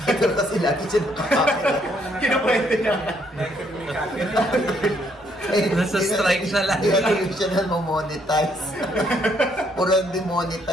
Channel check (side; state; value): both; normal; correlation 0.70